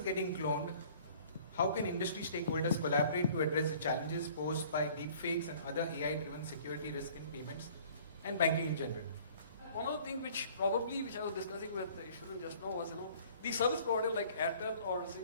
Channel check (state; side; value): inverted; both; correlation -0.52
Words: getting cloned. How can industry stakeholders collaborate to address the challenges posed by deepfakes and other AI-driven security risk in payments and banking in general? One of the things which I was discussing with Ishwaran just now was, the service provider like Airtel or